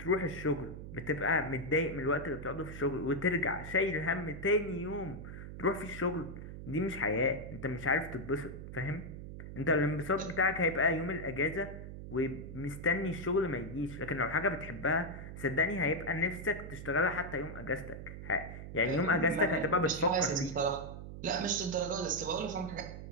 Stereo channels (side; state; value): right; noise; hum, 10 dB below the sound